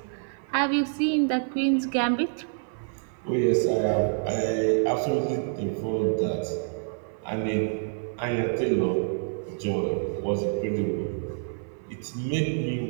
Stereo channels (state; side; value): silent; left; 58 dB below the other